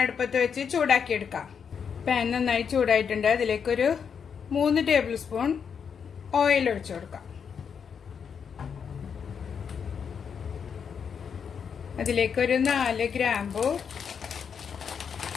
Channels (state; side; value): quieter; right; 6.9 dB